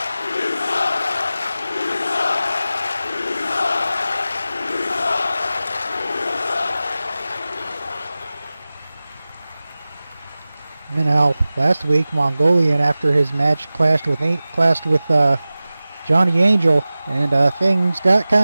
You know, last week Mongolian, after his match, clashed with Johnny Angel, and things got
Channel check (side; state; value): both; inverted; correlation -0.96